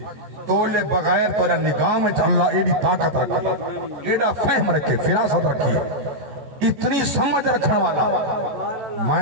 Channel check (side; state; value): left; late; 14 ms